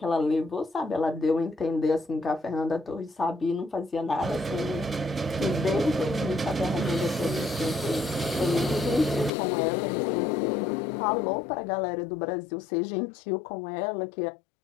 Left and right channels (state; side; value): drops out; right; at 9.3 s